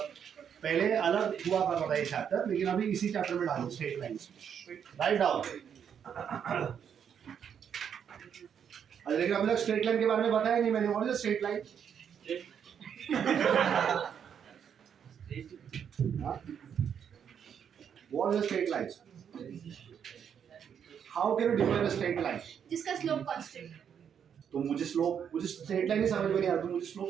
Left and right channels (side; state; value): left; quieter; 8.0 dB